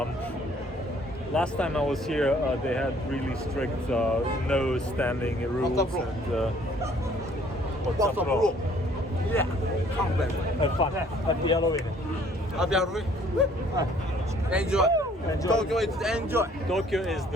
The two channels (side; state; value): both; normal; correlation 0.59